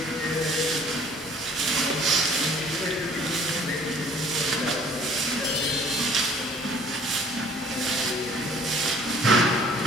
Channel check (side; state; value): both; normal; correlation 0.55